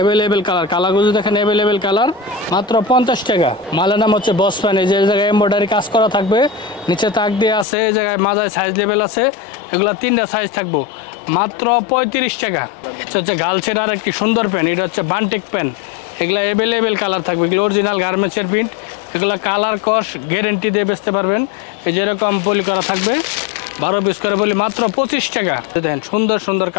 কালার, কালারগুলো দেখেন অ্যাভেলেবেল কালার, মাত্র 50 টাকা। মালের নাম হচ্ছে বস প্যান, এই যে জায়গায় এমব্রয়ডারি কাজ করা থাকবে, নিচে তাক দিয়ে আছে, এই জায়গায় মাজায় সাইজ লেভেল আছে। এগুলো 3টা সাইজ থাকবো, মাত্র 35 টাকা। এটা হচ্ছে গার্লসের আর একটি সুন্দর প্যান্ট, এটা হচ্ছে বান্টেক প্যান্ট। এগুলো অ্যাভেলেবেল কালার থাকবে, এগুলো অরিজিনাল গার্মেন্টসের প্রিন্ট, এগুলো কালার কস গ্যারেন্টি দিয়ে বেচতে পারবেন। এই যেরকম পলি করা থাকবে 12 পিস করে বলি মাত্র 25 টাকা। দেখেন সুন্দর সুন্দর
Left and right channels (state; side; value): drops out; right; at 7.7 s